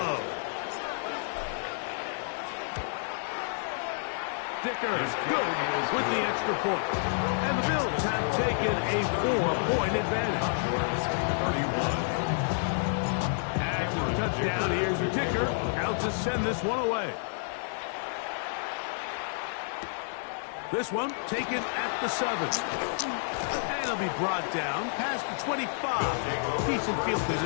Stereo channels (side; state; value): right; silent; digital silence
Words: Dicker good with the extra point. And the Bills have taken a 4-point advantage. 31. After the touchdown, here's your Dicker out to send this one away. This one taken at the 7. And he'll be brought down past the 25. Decent field